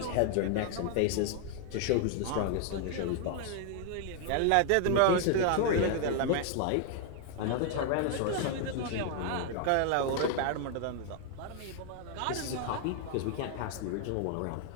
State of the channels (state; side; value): different; both; correlation 0.00